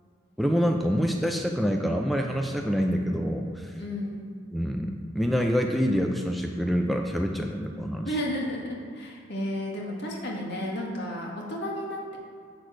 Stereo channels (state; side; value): normal; both; correlation 0.84